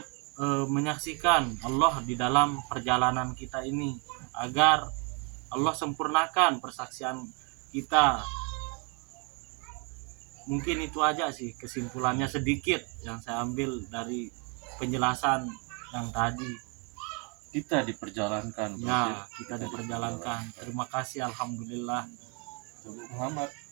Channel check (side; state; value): left; quieter; 34.7 dB